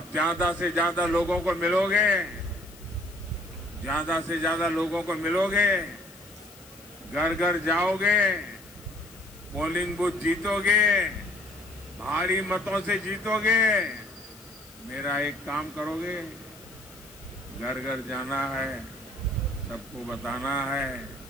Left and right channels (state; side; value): noise; left; hiss, 21 dB below the sound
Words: ज्यादा से ज्यादा लोगों को मिलोगे, ज्यादा से ज्यादा लोगों को मिलोगे, घर घर जाओगे, पोलिंग बूथ जीतोगे, भारी मतों से जीतोगे। मेरा एक काम करोगे, घर घर जाना है, सबको बताना है